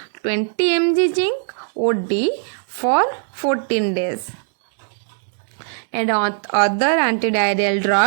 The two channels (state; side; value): silent; left; digital silence